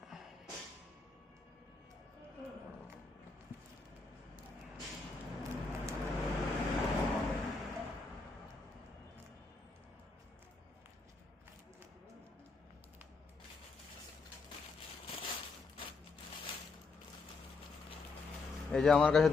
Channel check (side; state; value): right; quieter; 4.1 dB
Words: এই যে আমার কাছে